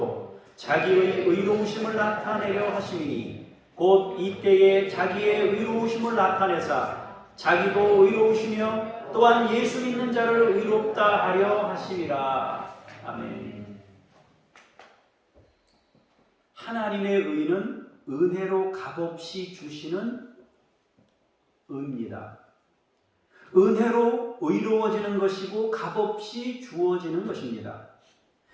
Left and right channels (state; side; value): identical; both; correlation 1.00